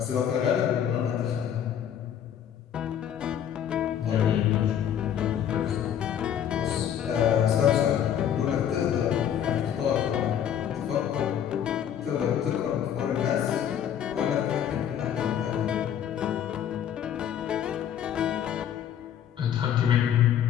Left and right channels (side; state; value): right; quieter; 9.5 dB